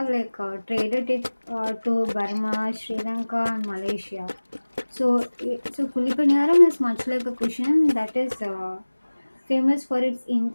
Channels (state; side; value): inverted; both; correlation -1.00